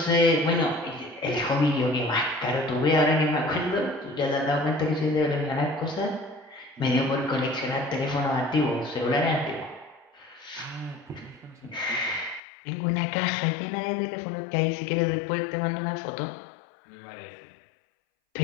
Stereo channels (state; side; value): drops out; right; at 12.4 s